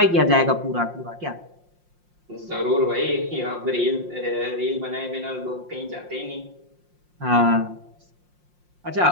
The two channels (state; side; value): late; left; 5.6 ms